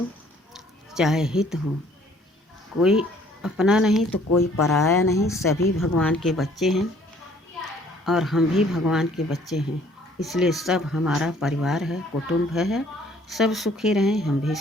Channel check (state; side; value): normal; both; correlation 0.59